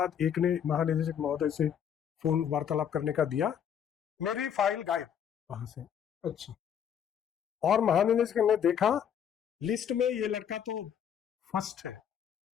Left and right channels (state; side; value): quieter; right; 8.7 dB